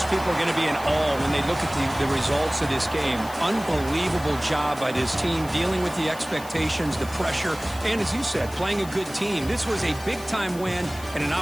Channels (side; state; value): left; noise; hiss, 17 dB below the sound